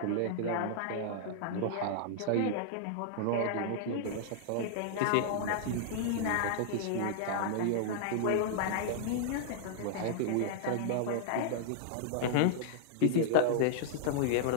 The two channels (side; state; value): both; different; correlation -0.01